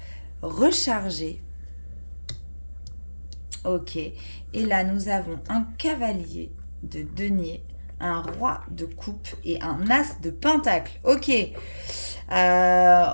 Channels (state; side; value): inverted; both; correlation -1.00